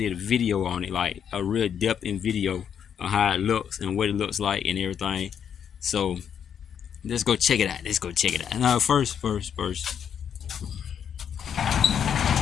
did a video on it, like a real depth in video on how it looks and what it looks like and everything. So let's go check it out. Let's go check it out. Now first.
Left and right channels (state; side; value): quieter; right; 8.3 dB